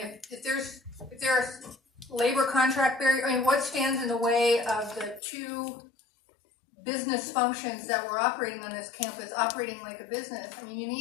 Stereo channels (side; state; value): right; drops out; at 5.2 s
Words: if there's labor contract barrier, I mean, what stands in the way of the two business functions that we're operating on this campus operating like a business? I mean, you